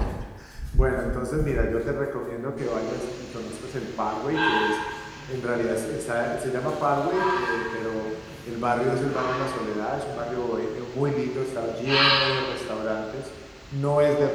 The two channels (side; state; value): both; identical; correlation 1.00